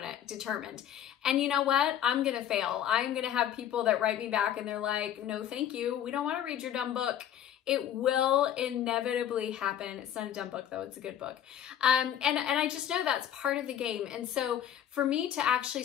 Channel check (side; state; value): right; quieter; 10.3 dB